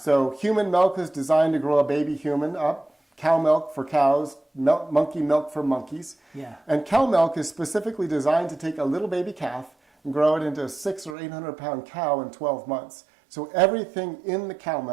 human milk is designed to grow a baby human up. Cow milk for cows, monkey milk for monkeys. Yeah. And cow milk is specifically designed to take a little baby calf and grow it into a 600 or 800 pound cow in 12 months. So everything in the cow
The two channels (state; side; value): drops out; left; at 11.2 s